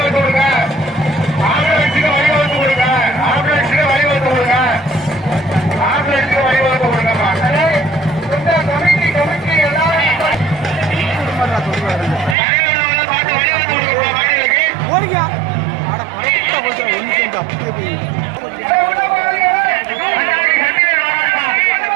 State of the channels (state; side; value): drops out; left; at 12.4 s